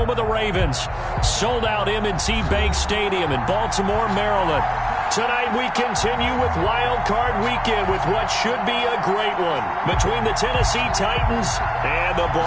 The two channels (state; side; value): identical; both; correlation 1.00